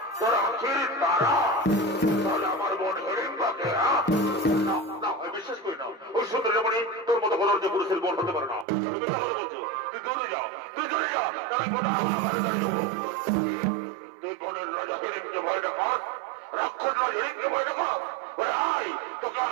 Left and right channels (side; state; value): left; drops out; at 8.7 s